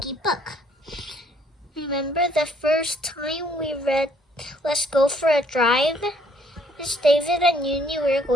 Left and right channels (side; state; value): both; normal; correlation 0.64